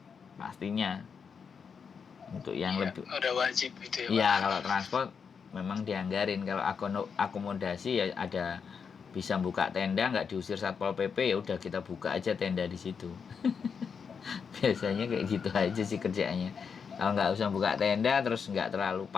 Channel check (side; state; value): right; quieter; 6.2 dB